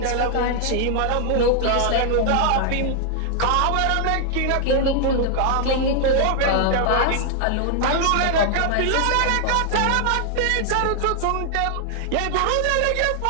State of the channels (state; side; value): different; both; correlation 0.00